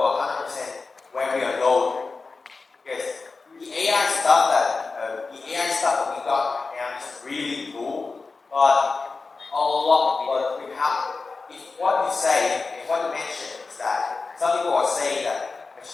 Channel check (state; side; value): quieter; right; 4.1 dB